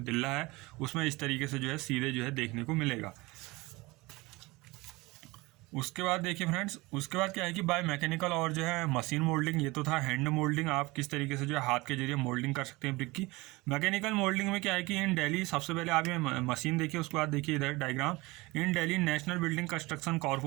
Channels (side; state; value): left; quieter; 22.4 dB